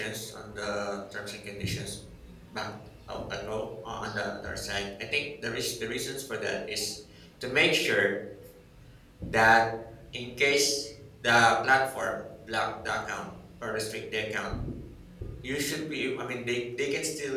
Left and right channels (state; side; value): identical; both; correlation 1.00